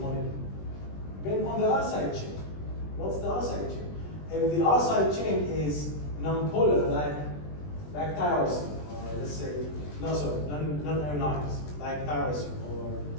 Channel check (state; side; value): late; right; 20 ms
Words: Depend on the R side chain. What's the R side chain? If the R side chain is non-polar, like tyrosine, or let's say, non-ionized, like tyrosine, or